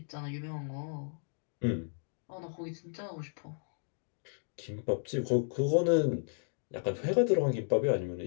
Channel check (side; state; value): right; silent; digital silence